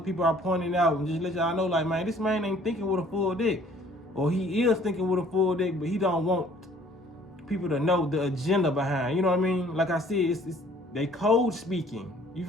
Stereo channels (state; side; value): normal; both; correlation 0.56